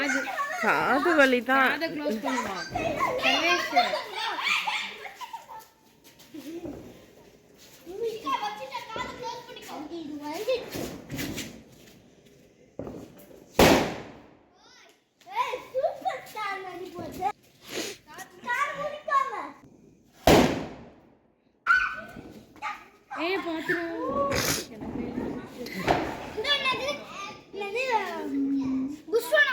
காது வலி தான். காதை க்ளோஸ் பண்ணுமா சர்வேஷ்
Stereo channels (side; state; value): both; identical; correlation 1.00